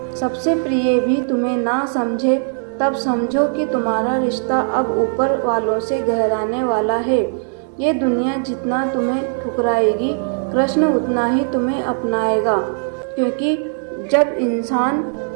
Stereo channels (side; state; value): left; silent; 59 dB below the other